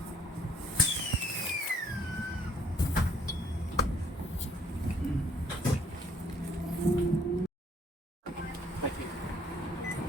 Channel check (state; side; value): normal; both; correlation 0.62